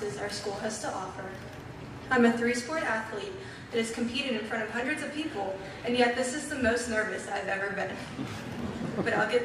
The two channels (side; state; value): both; identical; correlation 1.00